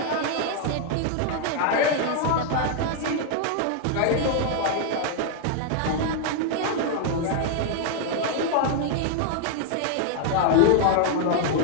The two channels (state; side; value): different; both; correlation 0.00